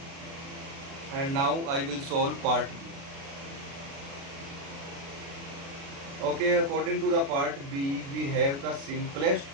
and now I will solve part B. Okay, according to the part B, we have the simplest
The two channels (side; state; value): left; late; 36 ms